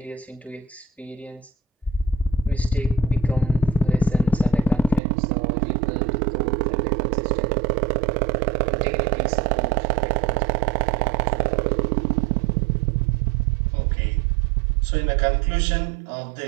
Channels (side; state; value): left; drops out; at 5.0 s